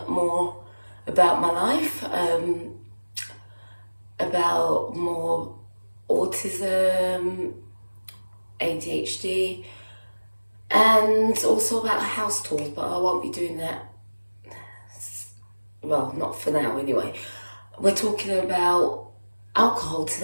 more about my life, about more autism, ADHD, and also about house tours, but I won't be doing that. Well, not for now anyway. We're talking about alcohol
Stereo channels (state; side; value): inverted; both; correlation -1.00